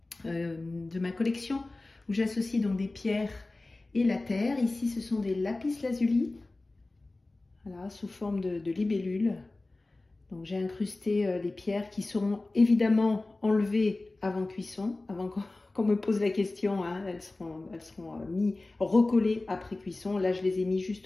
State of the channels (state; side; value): quieter; right; 3.0 dB